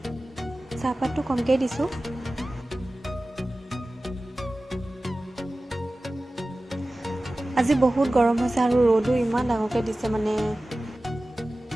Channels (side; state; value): both; normal; correlation 0.96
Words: চাহপাতটো কমকৈ দিছোঁ। আজি বহুত গৰম হৈছে আৰু ৰ'দো ইমান ডাঙৰকৈ দিছে মানে।